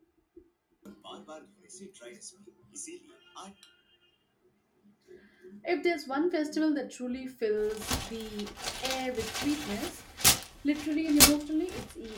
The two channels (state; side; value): identical; both; correlation 1.00